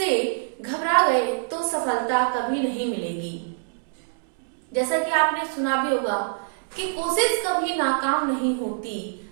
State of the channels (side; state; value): left; silent; digital silence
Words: घबरा गए तो सफलता कभी नहीं मिलेगी। जैसा कि आपने सुना भी होगा कि कोशिश कभी नाकाम नहीं होती,